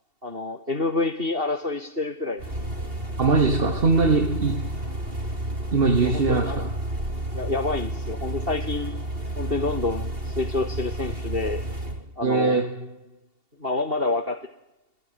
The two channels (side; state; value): left; late; 2.7 ms